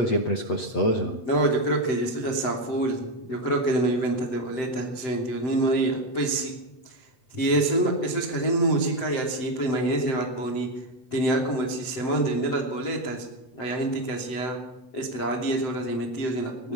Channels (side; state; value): right; late; 7.8 ms